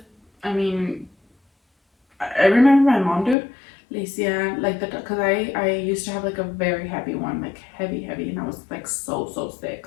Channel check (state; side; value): drops out; right; at 3.4 s